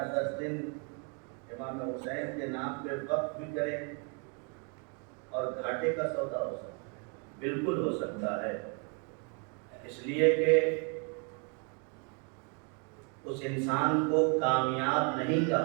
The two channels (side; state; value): left; quieter; 37.0 dB